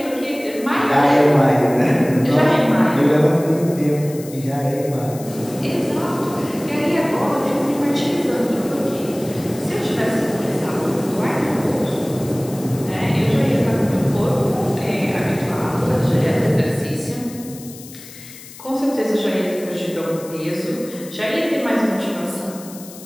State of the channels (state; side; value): noise; left; hiss, 17 dB below the sound